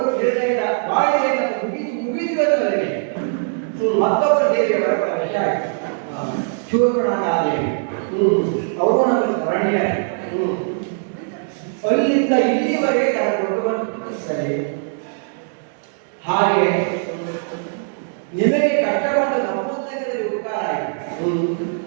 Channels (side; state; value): left; silent; digital silence